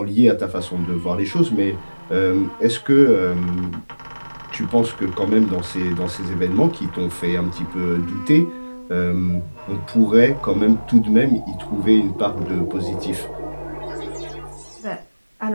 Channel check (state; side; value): inverted; both; correlation -1.00